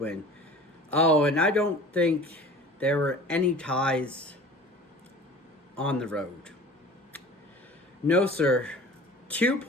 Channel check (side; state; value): both; normal; correlation 0.42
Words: Oh, and I don't think there were any ties on the road. No, sir. 2